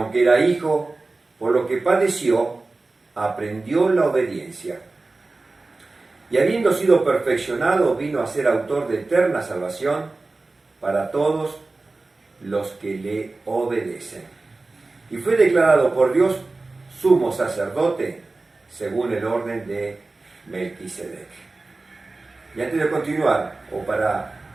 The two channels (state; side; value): quieter; left; 3.4 dB